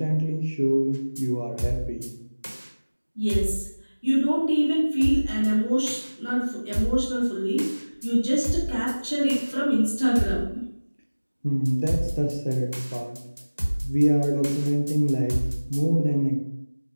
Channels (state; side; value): inverted; both; correlation -1.00